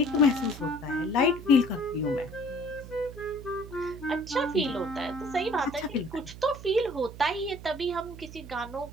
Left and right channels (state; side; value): noise; right; hum, 14 dB below the sound